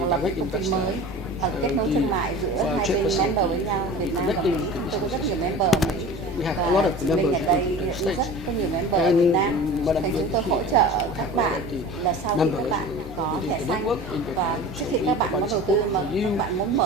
là một công ty mới, hoặc kết nối thương mại giữa hai bên member với nhau, Việt Nam và Mỹ. Chúng tôi có rất nhiều member ở Mỹ và chị Minh ở đây rất có nhiều member ở Việt Nam. Thành chúng tôi hỗ trợ các bạn là sau khi các bạn có thẻ xanh và trước khi các bạn có đầu tư mà các bạn muốn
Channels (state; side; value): normal; both; correlation 0.37